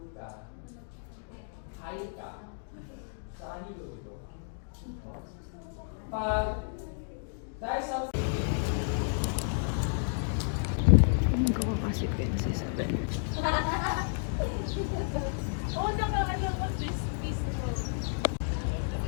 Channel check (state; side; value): silent; right; digital silence